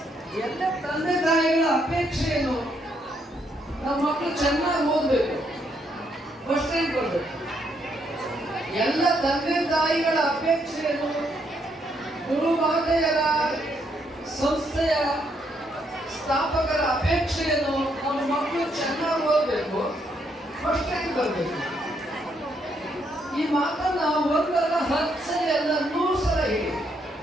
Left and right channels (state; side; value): normal; both; correlation 0.74